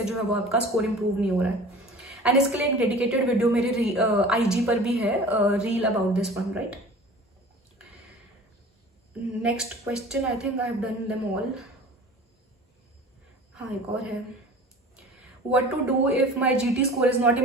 जो है वो आपका स्कोर इंप्रूव नहीं हो रहा है। एंड इसके लिए एक डेडिकेटेड वीडियो मेरे IG पर भी है, reel about this one, right. Next question, I think I have done them all. हाँ, एक और है, what to do if my GT score is not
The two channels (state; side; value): normal; both; correlation 0.42